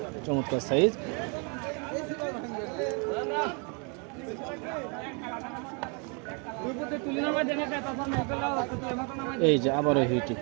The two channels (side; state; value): left; quieter; 35.1 dB